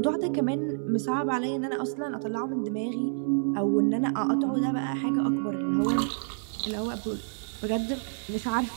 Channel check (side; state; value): left; silent; 59 dB below the other